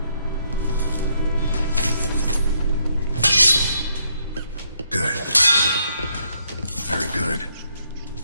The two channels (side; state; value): both; inverted; correlation -0.73